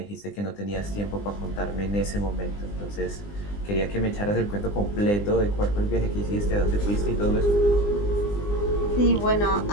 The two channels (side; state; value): right; late; 20 ms